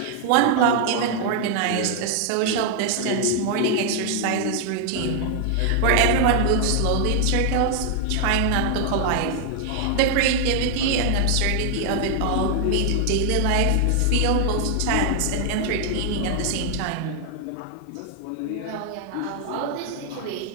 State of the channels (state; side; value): different; both; correlation 0.00